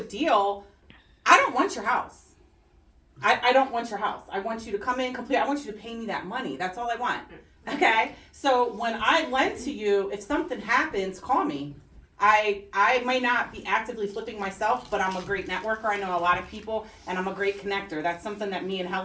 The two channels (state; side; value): identical; both; correlation 1.00